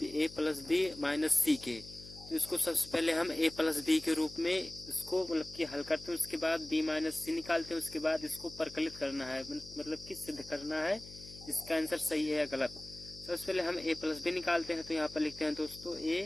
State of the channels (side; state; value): left; noise; hum, 17 dB below the sound